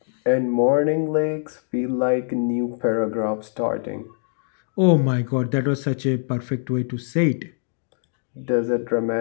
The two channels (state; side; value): silent; right; digital silence